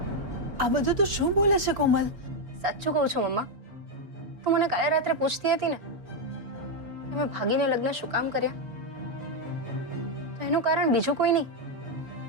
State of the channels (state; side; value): late; left; 4.7 ms